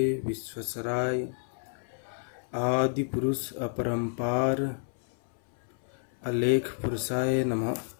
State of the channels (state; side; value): silent; right; 58 dB below the other